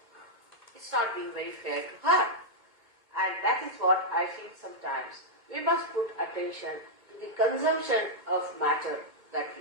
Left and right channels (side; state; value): left; late; 2.2 ms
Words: it's not being very fair to her. And that is what I feel sometimes. We must put attention to the consumption of matter that